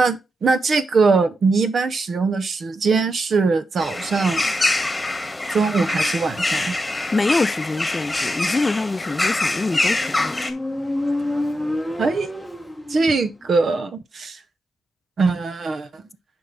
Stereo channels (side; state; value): both; normal; correlation 0.87